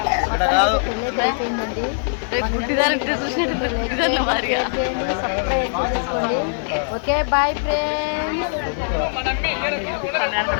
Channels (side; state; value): right; silent; digital silence